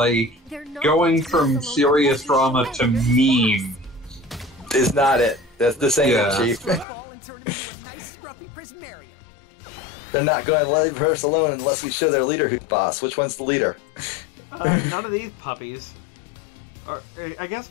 going from serious drama to meme. Is not it. This ain't Yeah. it, Chief. Ball and turn him into a nice scruffy prismarium. They're not going to leave us alone unless we show their leader who's boss. Which one's the leader? None of these puppies. I guess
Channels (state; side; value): drops out; right; at 6.9 s